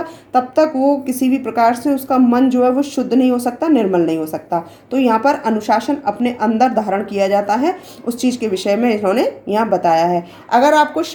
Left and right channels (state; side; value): identical; both; correlation 1.00